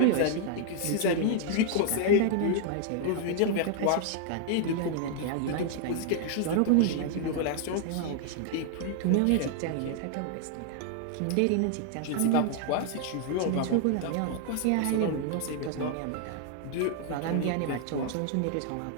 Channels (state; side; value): different; both; correlation 0.00